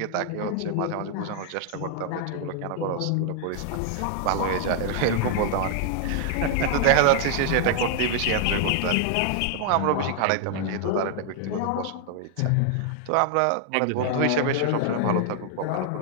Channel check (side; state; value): both; different; correlation 0.00